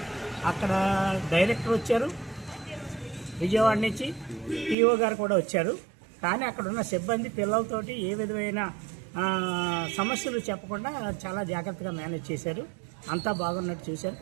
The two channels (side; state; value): left; drops out; at 4.8 s